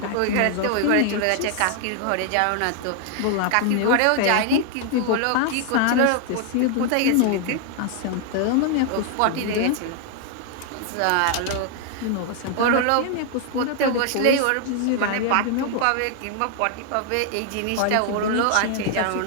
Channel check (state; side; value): different; both; correlation 0.00